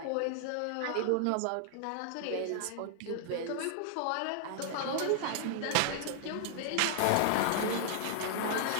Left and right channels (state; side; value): different; both; correlation -0.01